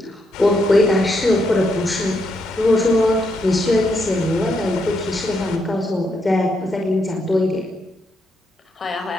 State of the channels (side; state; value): both; normal; correlation 0.79